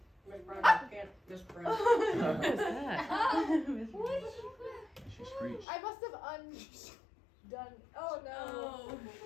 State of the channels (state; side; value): drops out; right; at 5.7 s